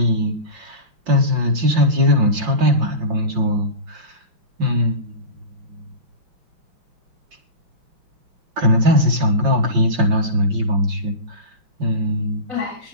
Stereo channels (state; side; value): late; left; 5.7 ms